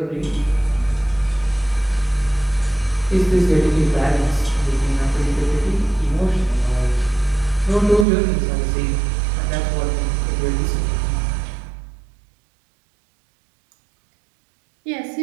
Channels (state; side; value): drops out; left; at 8.1 s